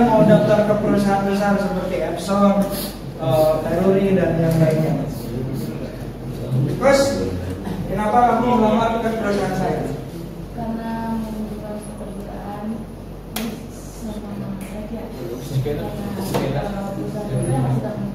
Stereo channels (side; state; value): both; identical; correlation 1.00